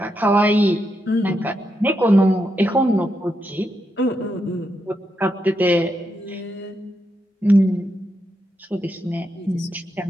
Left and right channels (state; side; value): normal; both; correlation 0.83